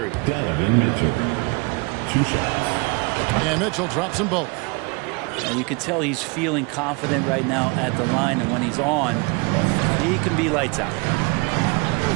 Donovan Mitchell. 2 shots. And Mitchell drops them both. And you can tell he's feeling confident right now at the line, and when he's on, he can be lights out.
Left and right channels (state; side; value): quieter; left; 29.2 dB